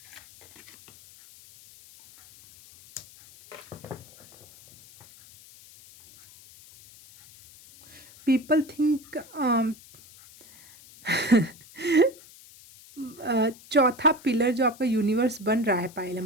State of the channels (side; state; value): left; noise; hiss, 22 dB below the sound